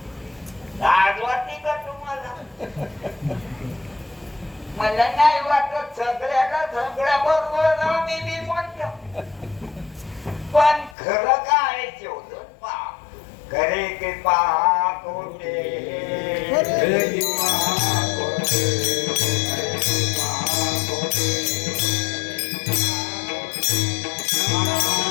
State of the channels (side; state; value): right; drops out; at 11.0 s